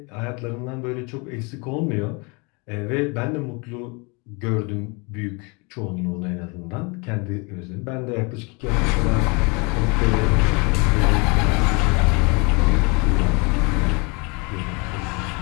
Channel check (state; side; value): quieter; right; 30.0 dB